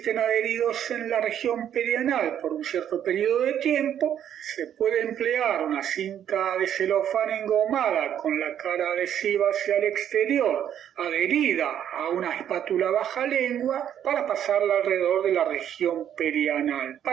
adheridos en la región perianal por un cierto periodo de tiempo, se puede emplear una cinta de celofán engomada con la cara adhesiva hacia el exterior, adherida a una espátula baja lengua, para pasarla alrededor de la región perianal,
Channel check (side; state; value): left; quieter; 9.9 dB